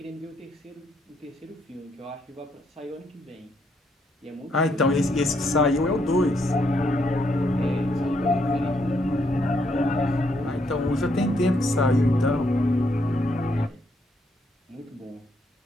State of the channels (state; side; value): normal; both; correlation 0.74